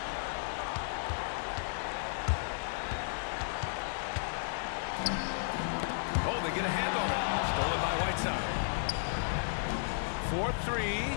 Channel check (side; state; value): right; silent; 55 dB below the other